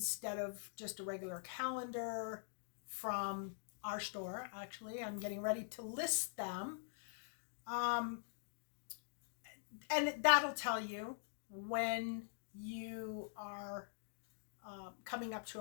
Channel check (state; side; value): silent; right; digital silence